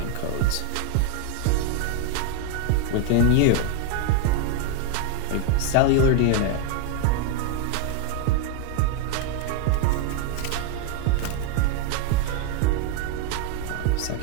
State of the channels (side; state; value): both; different; correlation 0.01